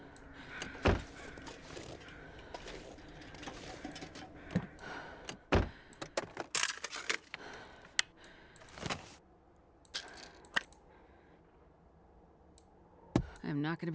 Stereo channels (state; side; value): identical; both; correlation 1.00